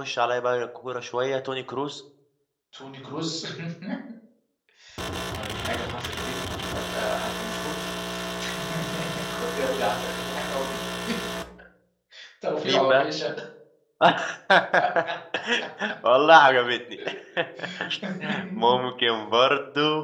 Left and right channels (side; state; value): both; identical; correlation 1.00